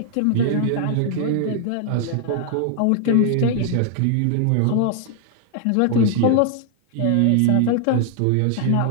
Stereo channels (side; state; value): both; different; correlation 0.00